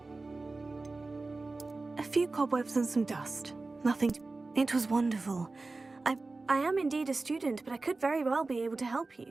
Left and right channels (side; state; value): left; quieter; 3.5 dB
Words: A few cobwebs and some dust. Nothing. It was wonderful. I am indeed a student, but I could very well be able to help you.